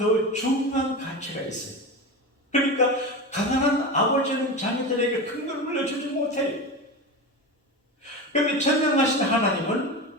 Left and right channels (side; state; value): both; normal; correlation 0.24